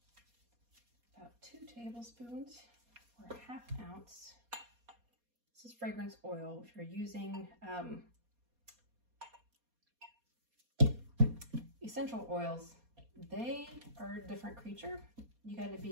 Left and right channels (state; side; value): late; left; 4.2 ms